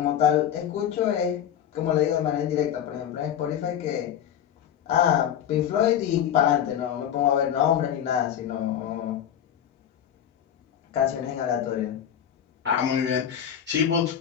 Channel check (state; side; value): quieter; right; 9.7 dB